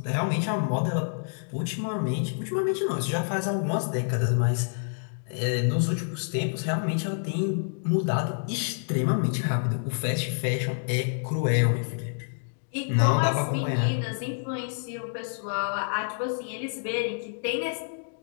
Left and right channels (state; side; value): silent; right; digital silence